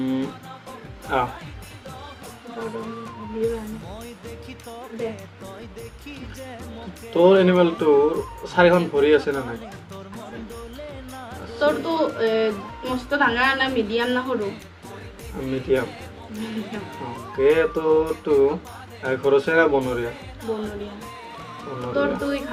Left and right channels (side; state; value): both; identical; correlation 1.00